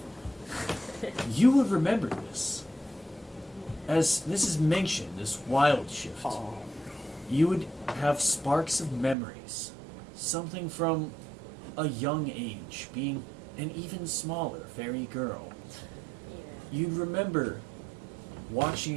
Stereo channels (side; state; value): left; drops out; at 9.2 s